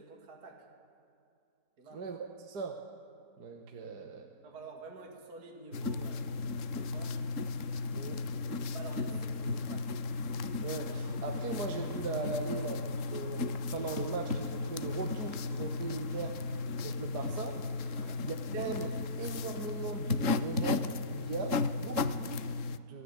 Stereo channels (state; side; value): late; left; 3.8 ms